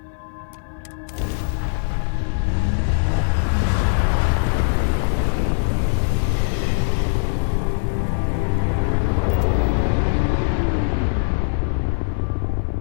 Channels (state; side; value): silent; right; 56 dB below the other